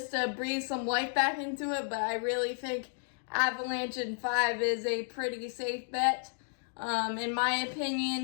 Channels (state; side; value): silent; right; digital silence